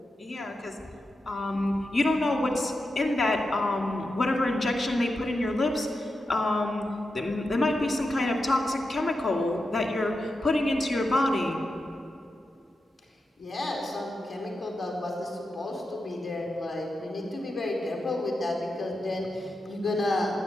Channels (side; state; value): both; normal; correlation 0.89